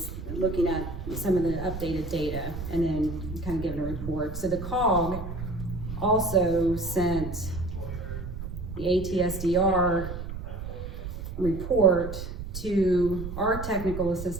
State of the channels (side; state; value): right; noise; rumble, 8 dB below the sound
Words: looking at some of the updated data and then kind of giving a report. So the COG also sent the ATSDR report to our technical